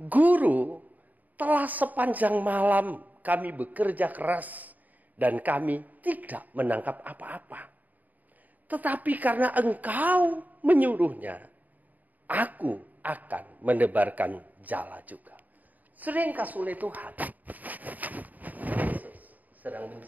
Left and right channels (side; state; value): left; late; 0.080 ms